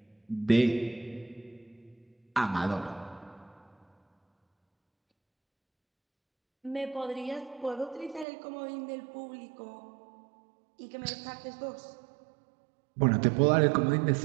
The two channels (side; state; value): left; drops out; at 8.2 s